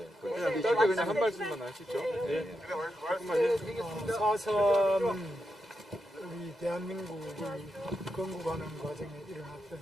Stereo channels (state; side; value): normal; both; correlation 0.86